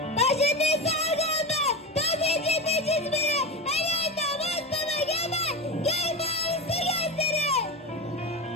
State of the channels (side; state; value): both; normal; correlation 0.20